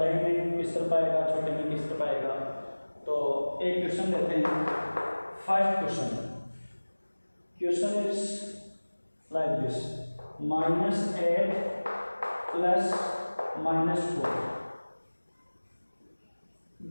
में किस तरह पाएगा, छोटे में किस तरह पाएगा। तो एक क्वेश्चन लेते हैं। First question is like this: -8 plus -4।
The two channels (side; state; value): both; inverted; correlation -1.00